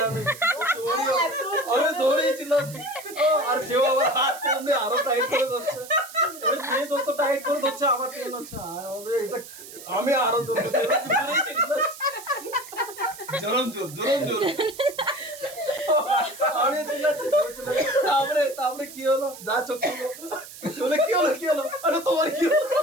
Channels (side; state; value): right; noise; hiss, 15 dB below the sound